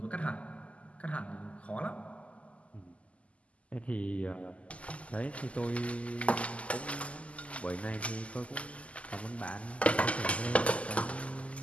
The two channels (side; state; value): right; late; 0.063 ms